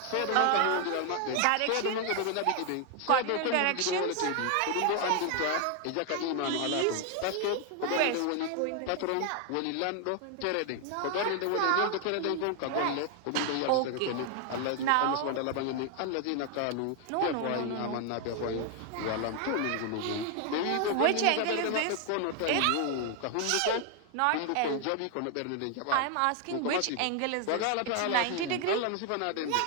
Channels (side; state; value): both; different; correlation 0.00